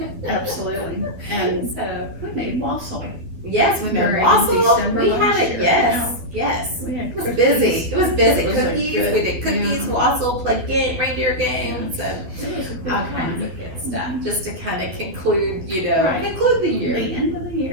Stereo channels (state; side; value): late; left; 11 ms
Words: absolutely. And So we made wassail. yes, we made During wassail. December We had last it. year, Yes, yes. We had It was cookies. busy. It was busy. It was a Cookies. good- We did cookies, yeah. wassail, played reindeer games, and It was a good all kinds time. of good stuff. Just to kind of conclude, Right. conclude the year. The end of the